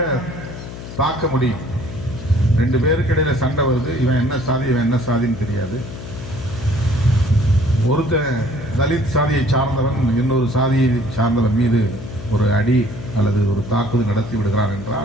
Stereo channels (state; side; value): noise; left; hum, 11 dB below the sound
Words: தாக்க முடியும். 2 பேருக்கு இடையில சண்டை வருது, இவன் என்ன சாதி இவன் என்ன சாதின்னு தெரியாது. ஒருத்த தலித் சாதியை சார்ந்தவன் இன்னொரு சாதியை சார்ந்தவன் மீது ஒரு அடி அல்லது ஒரு தாக்குதல் நடத்தி விடுகிறார்